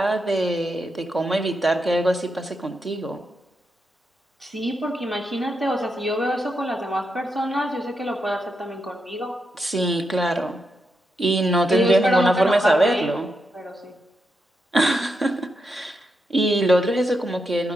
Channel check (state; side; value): normal; both; correlation 0.84